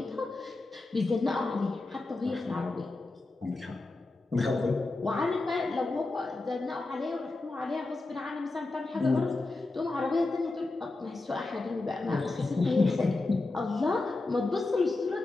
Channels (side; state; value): right; quieter; 3.2 dB